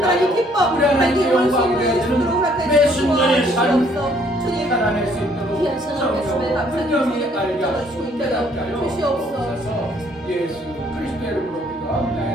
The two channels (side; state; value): both; normal; correlation 0.63